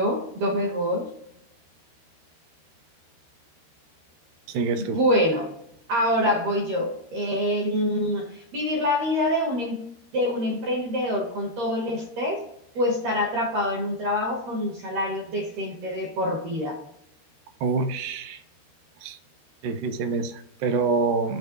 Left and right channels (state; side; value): late; left; 13 ms